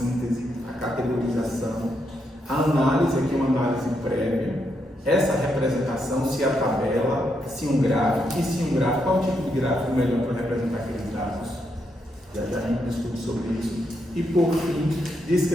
a categorização, a análise, aqui uma análise prévia, essa representação, se a tabela, se um gráfico, e se um gráfico, qual tipo de gráfico melhor para representar aqueles dados? Já a gente discute sobre isso. E por fim,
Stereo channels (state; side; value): normal; both; correlation 0.80